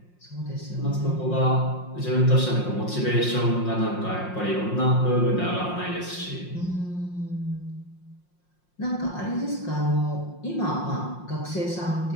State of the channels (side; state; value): right; late; 5.6 ms